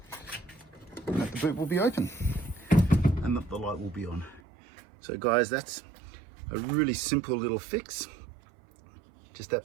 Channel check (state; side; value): drops out; left; at 4.4 s